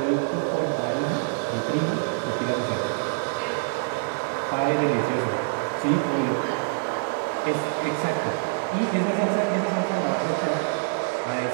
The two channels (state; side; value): silent; left; digital silence